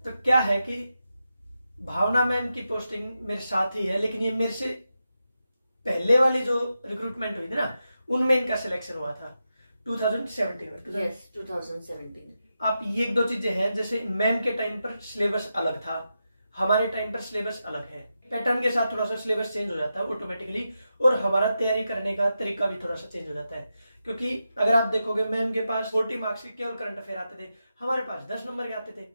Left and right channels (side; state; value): both; inverted; correlation -0.88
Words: तो क्या है कि भावना मैम की पोस्टिंग मेरे साथ ही है, लेकिन ये मेरे से पहले वाली जो रिक्रूटमेंट हुई थी ना, उनमें इनका सिलेक्शन हुआ था 2017 में। यस, 2017। आप ये एक दो चीजें हैं, जैसे मैम के टाइम पर सिलेबस अलग था, हमारे टाइम पर सिलेबस अलग है। पैटर्न के साथ थोड़ा सा सिलेबस चेंज हो जाता है ऑटोमेटिकली, और हमारा तैयारी करने का तरीका भी थोड़ा सा चेंज हो जाता है। क्योंकि अगर आप देखोगे मैम के पास 40 मार्क्स के केवल करंट अफेयर आते थे, हमारे पास 10 नंबर के आते थे।